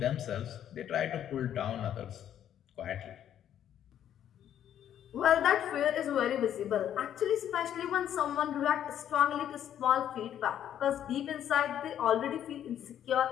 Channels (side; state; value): right; quieter; 10.3 dB